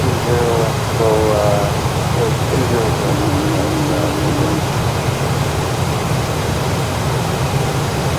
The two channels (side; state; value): both; identical; correlation 1.00